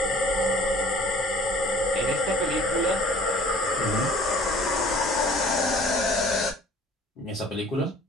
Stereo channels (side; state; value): both; normal; correlation 0.50